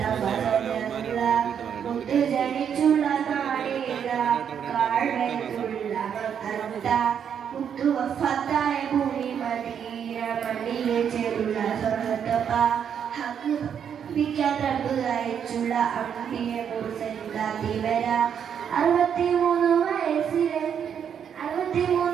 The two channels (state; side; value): quieter; left; 8.1 dB